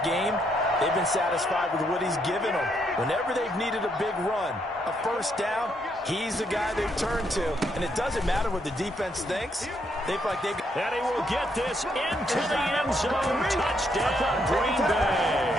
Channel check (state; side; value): normal; both; correlation 0.75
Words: game, they've been satisfied with what he's given them. Whenever they've needed a big run, a first down, he's the guy they've turned to. And it doesn't matter what the defense thinks. They feel like they... And he will get this into the end zone. Touchdown, Green Bay.